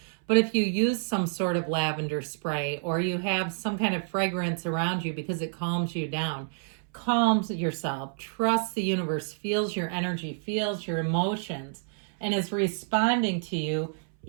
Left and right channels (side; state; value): left; silent; 59 dB below the other